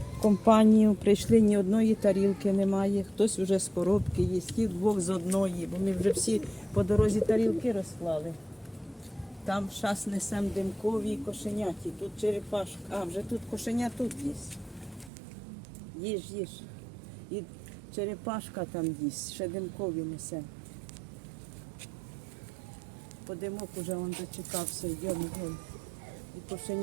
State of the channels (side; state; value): left; drops out; at 15.1 s